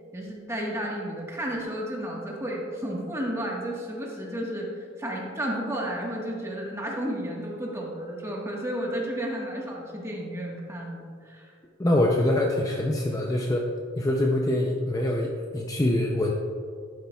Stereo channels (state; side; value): normal; both; correlation 0.65